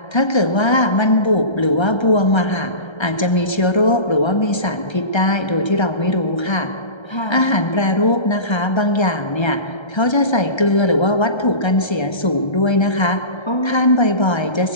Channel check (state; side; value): late; right; 1.3 ms